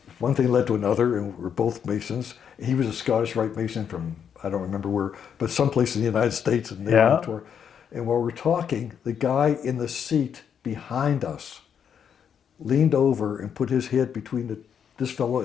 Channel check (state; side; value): quieter; right; 7.9 dB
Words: one thing led to another, and we're both Masons. He was a Scottish Rite Mason from, I don't remember where, but someplace in the United States, and they were on tour. And while we're talking, the guy in the seat behind us leaned over and put his head between this fellow